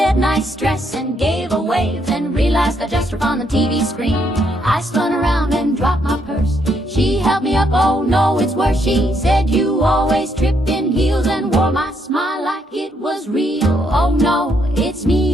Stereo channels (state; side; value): normal; both; correlation 0.74